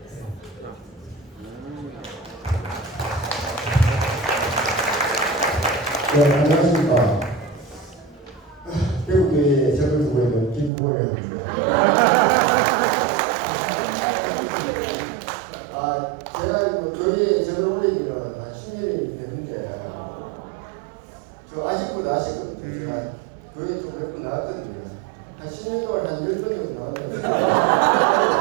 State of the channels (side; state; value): left; drops out; at 10.7 s